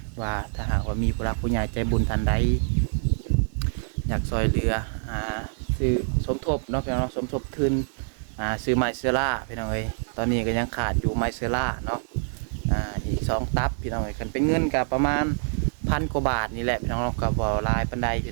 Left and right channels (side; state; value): left; silent; 61 dB below the other